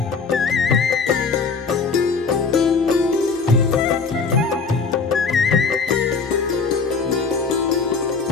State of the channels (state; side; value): quieter; right; 4.9 dB